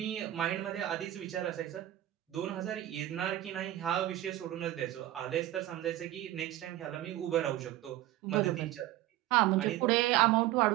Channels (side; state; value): left; quieter; 14.3 dB